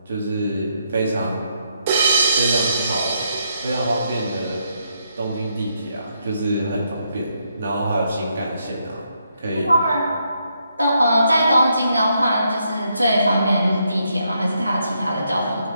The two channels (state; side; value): inverted; both; correlation -0.77